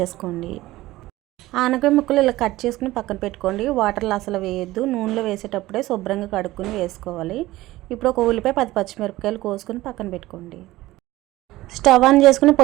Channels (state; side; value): quieter; left; 17.3 dB